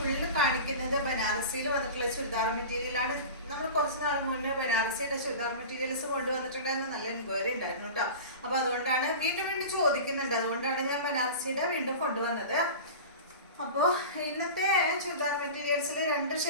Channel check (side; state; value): both; inverted; correlation -0.33